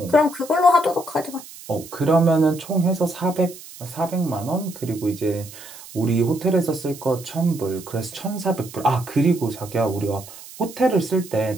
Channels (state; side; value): noise; right; hiss, 17 dB below the sound